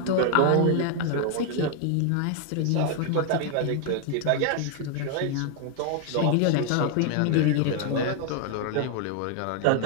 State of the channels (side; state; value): both; different; correlation 0.00